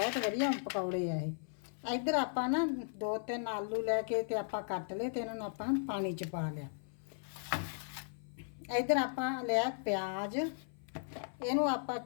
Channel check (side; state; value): right; silent; 53 dB below the other